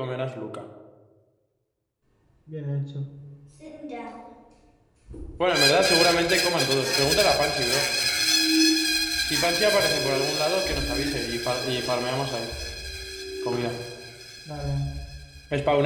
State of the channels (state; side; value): identical; both; correlation 1.00